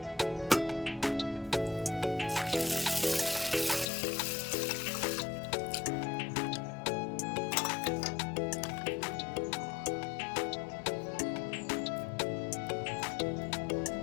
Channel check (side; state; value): right; drops out; at 3.9 s